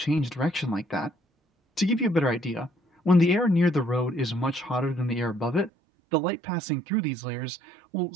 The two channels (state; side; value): drops out; left; at 5.7 s